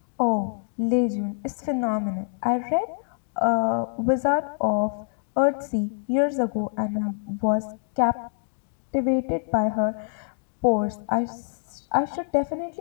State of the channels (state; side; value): silent; right; digital silence